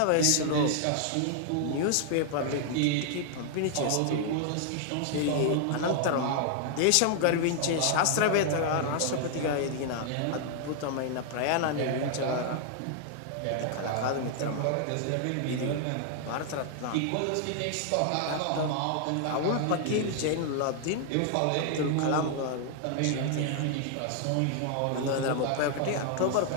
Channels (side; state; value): both; different; correlation 0.00